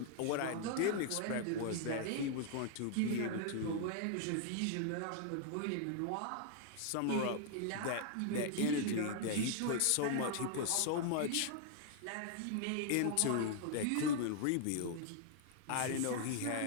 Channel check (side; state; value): both; different; correlation 0.00